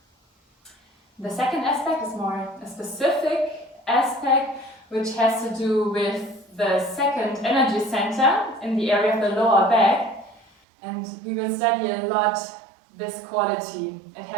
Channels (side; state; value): left; drops out; at 10.5 s